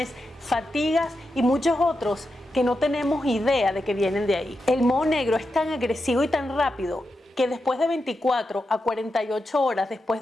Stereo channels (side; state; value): both; normal; correlation 0.88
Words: fatigas y muchos otros que no tenemos idea de que vienen de ahí. El moho negro es tan agresivo y tan rápido que después de 24 a 48 horas después